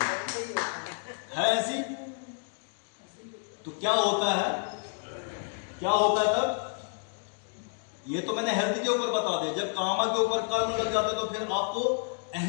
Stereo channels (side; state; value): right; silent; digital silence